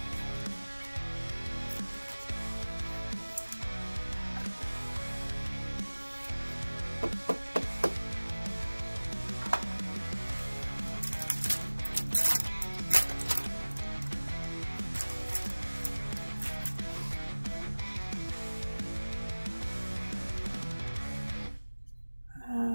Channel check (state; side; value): inverted; both; correlation -1.00